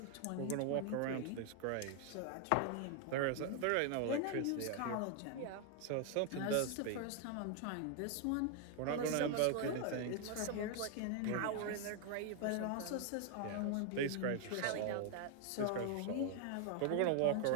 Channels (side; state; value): both; different; correlation 0.00